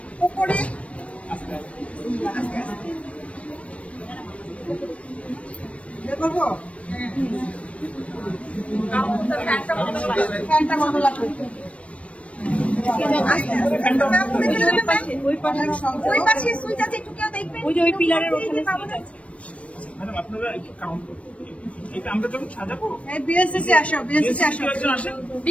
উপরে করবো ওই পিলারের ওখানে আপনারা একটু কাউন্ট করুন। আমরা যখন সাজাবো বিএসসি আসো, বিএসসি আসো,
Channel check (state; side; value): late; right; 0.063 ms